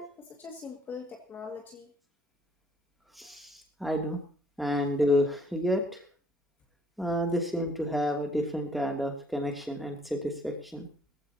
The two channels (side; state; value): both; normal; correlation 0.62